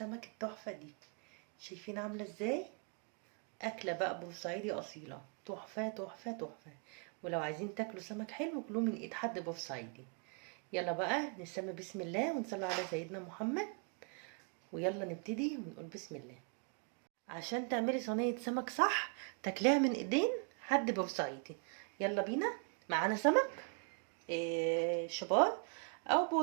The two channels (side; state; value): left; quieter; 39.0 dB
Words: التحفة دي؟ شايفين عاملة ازاي؟ اكلة بقى بورسعيدي اصيلة، تحفة تحفة تحفة. ولو عايزين تاكلوا سمك حلو كلوه من ايد حد بورسعيدي. يلا بقى نسمي بسم الله ونصلي على سيدنا محمد، ويلا نبتدي ونقول بسم الله. عشان تعملي صينية سمك صح تاكليها من ايدين حد بورسعيدي. يلا بينا. معانا سمك شبار او